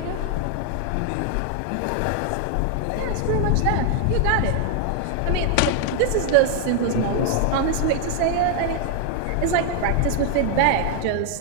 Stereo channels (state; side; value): different; both; correlation 0.00